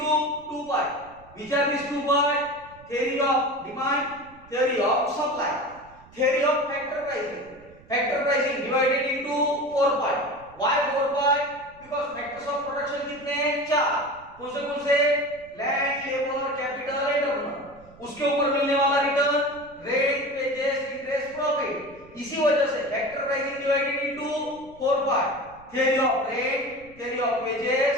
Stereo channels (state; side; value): noise; right; rumble, 24 dB below the sound